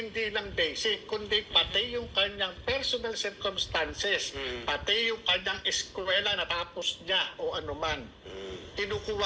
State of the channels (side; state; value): both; identical; correlation 1.00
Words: lang basic, kundi pati yung kanyang personal circumstances, pati yung kanyang eskwela na tapos niya o anuman.